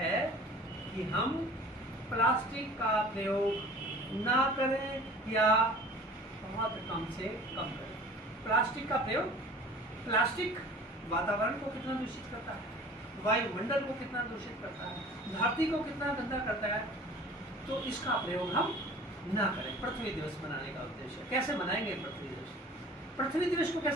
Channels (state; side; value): normal; both; correlation 0.45